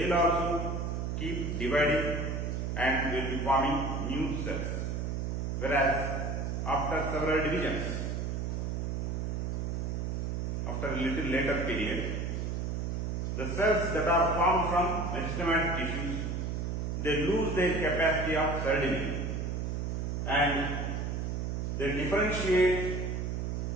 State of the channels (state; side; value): noise; right; hum, 1 dB below the sound